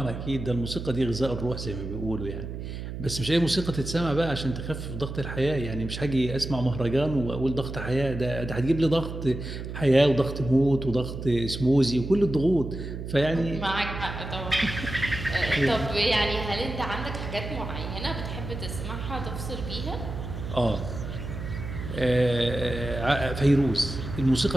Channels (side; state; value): right; noise; hum, 7 dB below the sound